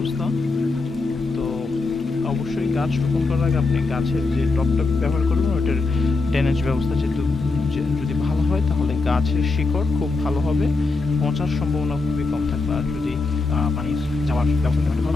তো অবশ্যই গাছ রোপণ করার আগে আপনি গাছের যে টপটা ব্যবহার করবেন ওইটার ড্রেনেজ ব্যবস্থা যেহেতু যদি ভালো হয় তাহলে গাছের শিকড় খুব ভালো হবে, পচার সম্ভাবনা খুবই কম থাকবে। আর যদি পানি যাওয়ার ব্যবস্থা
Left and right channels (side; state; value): right; quieter; 3.7 dB